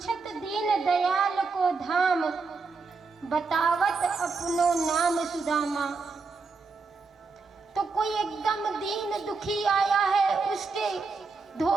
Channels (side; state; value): left; quieter; 4.4 dB